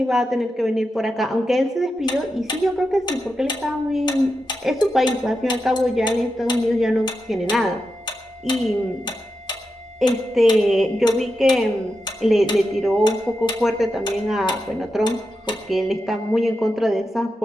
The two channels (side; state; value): both; normal; correlation 0.89